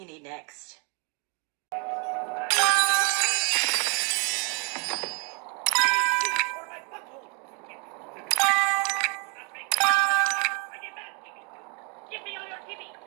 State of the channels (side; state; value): left; quieter; 35.0 dB